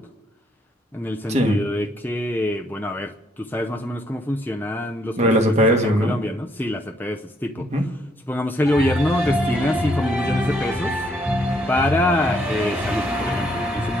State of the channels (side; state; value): both; normal; correlation 0.70